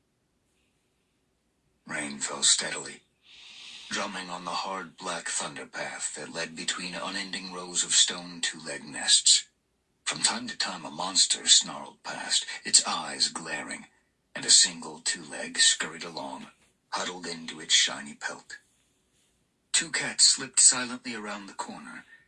Rain fell steadily, drumming on the hard black thunder path that led between unending rows of stone two-leg nests. From time to time a monster snarled past, its eyes glaring, and a single two-leg scurried along, huddled into its shiny pelt. Two cats slipped silently around the corner,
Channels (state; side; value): identical; both; correlation 1.00